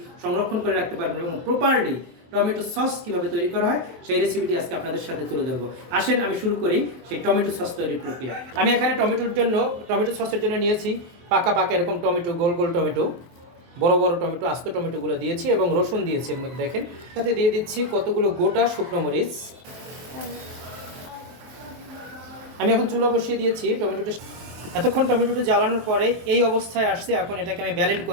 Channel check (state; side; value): late; left; 23 ms